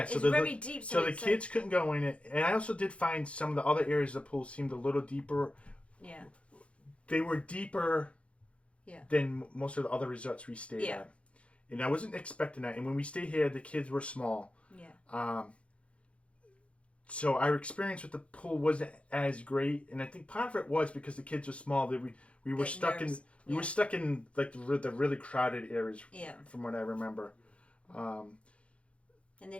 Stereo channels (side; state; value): right; late; 0.061 ms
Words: so it's very deep. So the kids couldn't go in it. And I also did find some of the other areas of the pool seemed a little deeper. Yeah. They were deeper than most of the other resorts we stayed at. And I wasn't expecting that. And when we stayed here, the kids were small. Yeah. So our experience with the pool wasn't as great. And I think part of it was because the kids were small. That we were stuck in like the really crowded areas. Yeah. From what I remember. And they